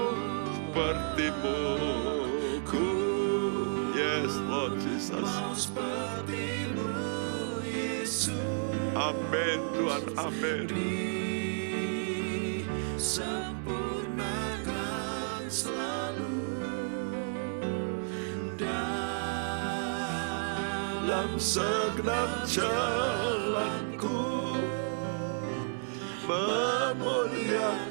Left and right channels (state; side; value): silent; left; 57 dB below the other